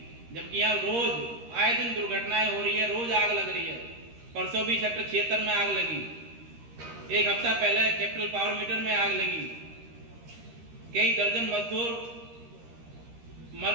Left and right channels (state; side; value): late; left; 13 ms